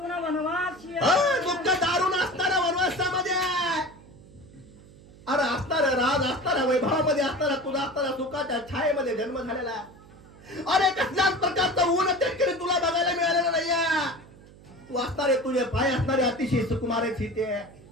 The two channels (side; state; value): right; noise; hum, 22 dB below the sound